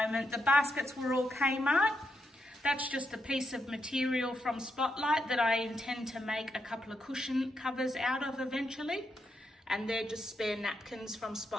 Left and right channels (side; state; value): both; normal; correlation 0.82